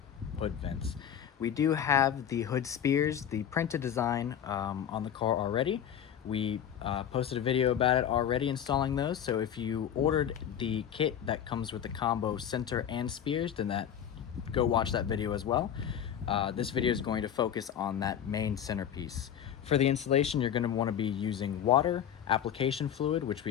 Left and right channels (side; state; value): right; quieter; 9.4 dB